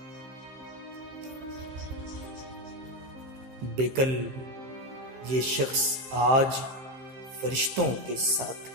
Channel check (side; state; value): left; late; 15 ms